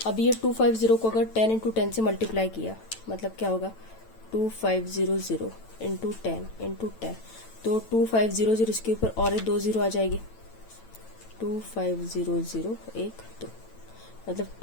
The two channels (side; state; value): right; late; 9.0 ms